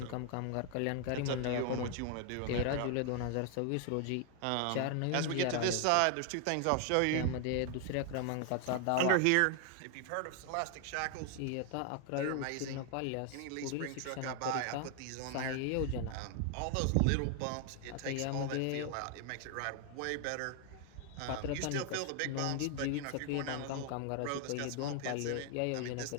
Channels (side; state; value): both; different; correlation 0.00